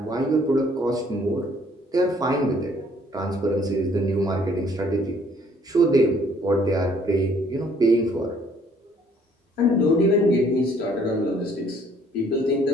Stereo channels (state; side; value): normal; both; correlation 0.61